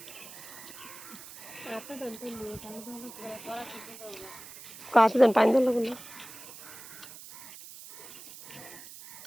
কাছে দেন পানি দেন না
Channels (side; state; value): right; noise; hiss, 15 dB below the sound